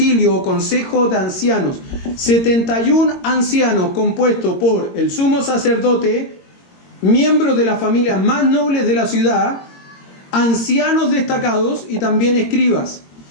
o consejo de ancianos. 71 ancianos compuestos por el sumo sacerdote, miembros de las familias más nobles de la ciudad, ancianos destacados y también escribas.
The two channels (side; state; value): right; late; 22 ms